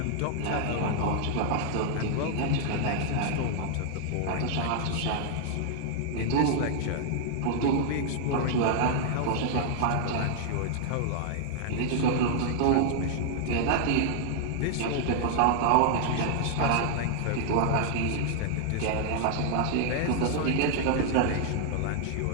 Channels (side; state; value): both; different; correlation -0.01